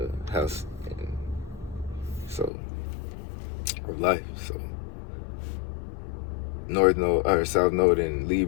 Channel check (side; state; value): right; drops out; at 2.5 s